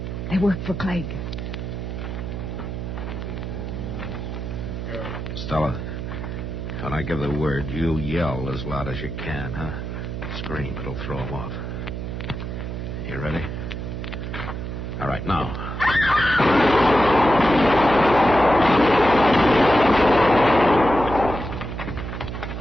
They work for Clegg. Stella, when I give the word, you yell as loud as you can, huh? Scream. It'll throw them off. You ready? All right, now.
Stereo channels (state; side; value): noise; right; hum, 6 dB below the sound